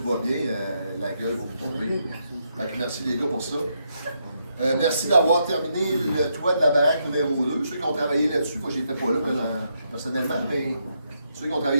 va bien, la gueule va vous tomber. Fait que merci les gars pour ça. Merci d'avoir terminé le toit de la baraque numéro 2. Ceux qui ont travaillé là-dessus, moi j'étais pas là personnellement, mais ceux qui ont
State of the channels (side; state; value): both; inverted; correlation -0.79